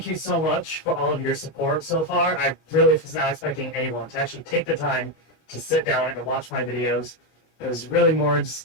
you so much for all of your support so far. I really was not expecting anyone to actually take the time to sit down and watch my videos. It was really more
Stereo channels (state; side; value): late; right; 25 ms